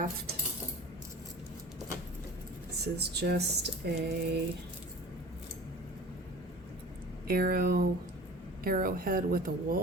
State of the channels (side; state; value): both; normal; correlation 0.41